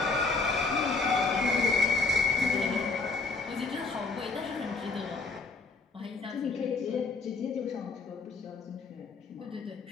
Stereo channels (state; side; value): quieter; right; 4.0 dB